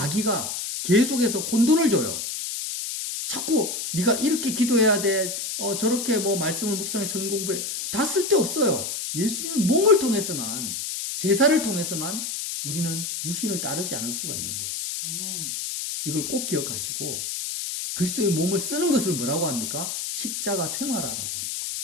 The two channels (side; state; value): left; noise; hiss, 4 dB below the sound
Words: 계속해서 혼돈을 줘요. 자꾸 네가 이렇게 기도해야 돼. 저렇게 말씀을 묵상해 성경 공부해. 다 쓸데없어요. 예수님의 몸을 통해서만, 제사를 통해서만 우리는 육신을 따르지 않을 수가 있는 거예요. 아멘. 이걸 꼭 기억하시고 그리스도의 몸을 쓰는 것을 뭐라고 합니까? 십자가 생활화라고 하는 거예요.